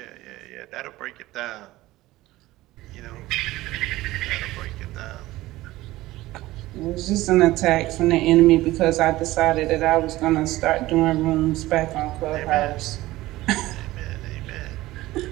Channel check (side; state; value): left; quieter; 17.4 dB